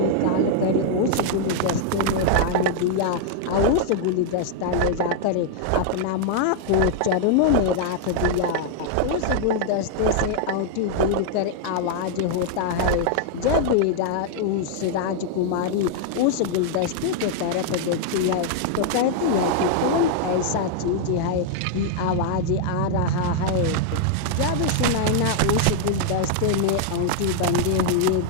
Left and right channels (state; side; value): different; both; correlation -0.01